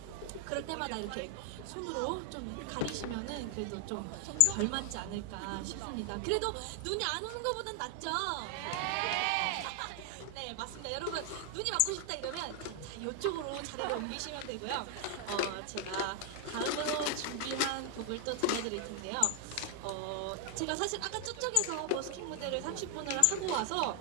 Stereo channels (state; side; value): different; both; correlation 0.00